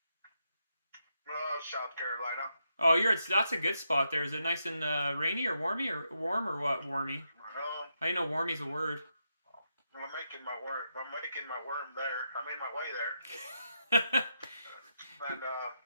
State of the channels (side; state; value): both; inverted; correlation -0.83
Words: South Carolina. Oh, that's a good spot there. Is it nice and rainy or warmy or warm or what? Warmy. I know warmy's a word. I'm making my worm there. I mean my way there. And